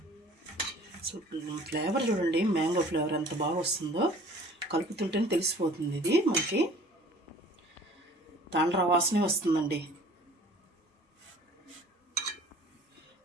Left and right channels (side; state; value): both; normal; correlation 0.49